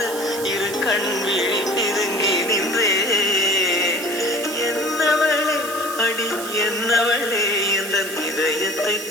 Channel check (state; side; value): noise; right; hiss, 10 dB below the sound